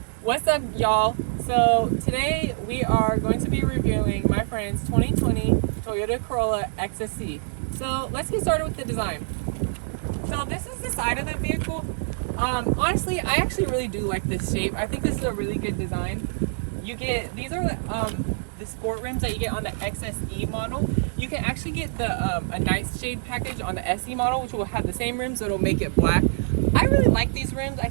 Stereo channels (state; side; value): silent; left; digital silence